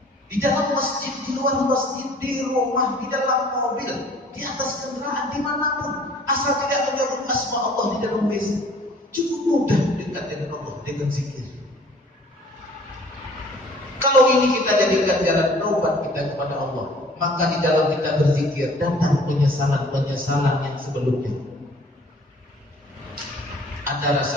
di dalam masjid, di luar masjid, di rumah, di dalam mobil, di atas kendaraan, dimanapun, asal tidak menyebut asma Allah di dalam WC. Cukup mudah dekat dengan Allah dengan zikir. Kalau ini kita jadikan jalan taubat kita kepada Allah, maka di dalam kita berzikir datang penyesalan-penyesalan yang sebelumnya. Ada rasa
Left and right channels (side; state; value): both; normal; correlation 0.53